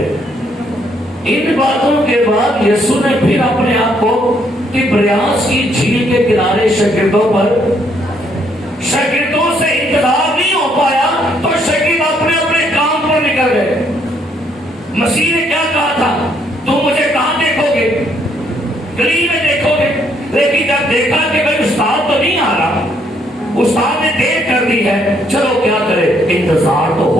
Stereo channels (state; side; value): normal; both; correlation 0.70